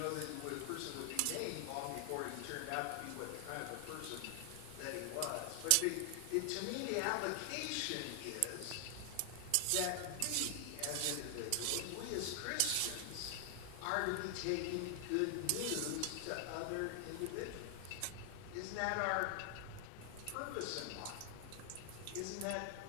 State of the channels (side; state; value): both; different; correlation 0.00